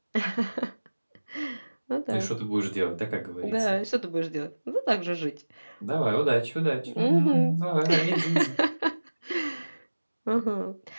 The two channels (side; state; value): both; inverted; correlation -1.00